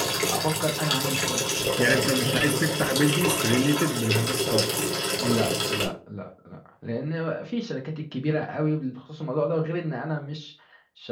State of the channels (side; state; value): both; identical; correlation 1.00